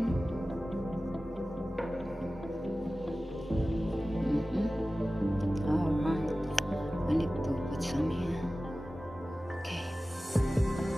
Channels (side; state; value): both; normal; correlation 0.96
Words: Alright, I need to put some here. Okay,